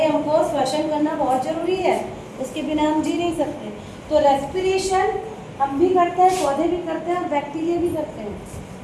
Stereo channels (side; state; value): both; identical; correlation 1.00